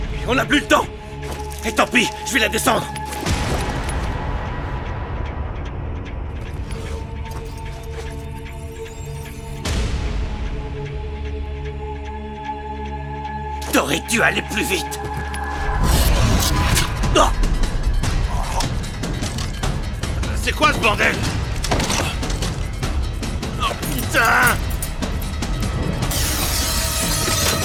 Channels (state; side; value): identical; both; correlation 1.00